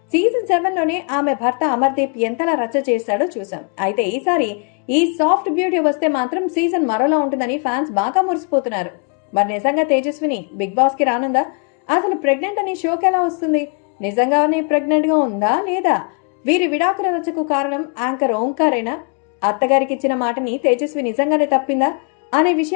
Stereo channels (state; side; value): quieter; right; 36.1 dB